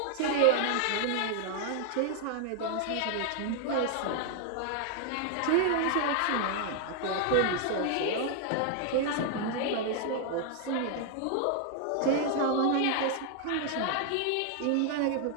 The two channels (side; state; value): both; different; correlation 0.00